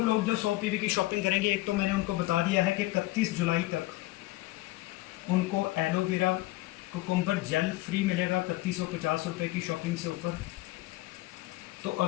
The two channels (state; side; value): quieter; right; 18.9 dB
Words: लोग जो 100 पीवी की शॉपिंग करेंगे, एक तो मैंने उनको बता दिया है कि 31 जुलाई तक उनको एलोवेरा कुकुम्बर जेल फ्री मिलेगा 3150 रुपये की शॉपिंग से ऊपर। तो